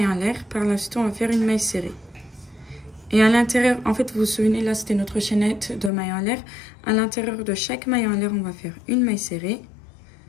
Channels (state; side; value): drops out; right; at 5.9 s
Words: en l'air. Par la suite, on va faire une maille serrée. Et à l'intérieur, en fait, vous vous souvenez, là, c'était notre chaînette de maille en l'air. À l'intérieur de chaque maille en l'air, on va faire une maille serrée.